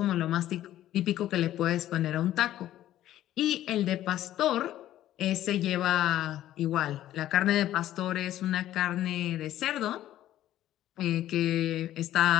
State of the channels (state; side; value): quieter; right; 13.1 dB